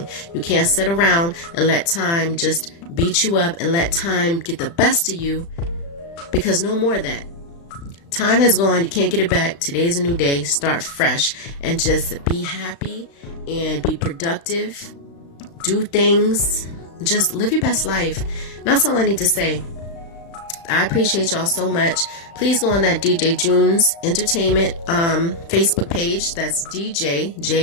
You can't sit around and let time just beat you up and let time get the best of you, because no more of that. Time has gone. You can't get it back. Today's a new day. Start fresh and just be happy and be productive. Do things. Just live your best life. That's all I need to say. I appreciate y'all so much. Please go on that DJ Junes Entertainment Facebook page. That's DJ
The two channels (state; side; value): late; right; 35 ms